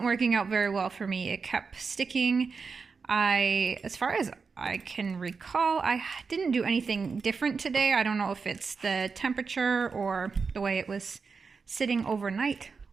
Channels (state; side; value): quieter; left; 5.0 dB